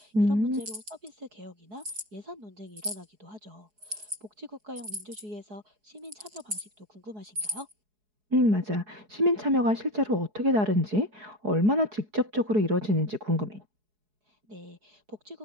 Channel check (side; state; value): left; late; 4.7 ms